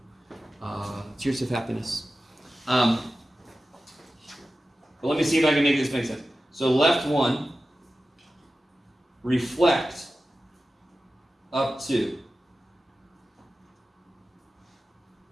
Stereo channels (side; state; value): both; normal; correlation 0.94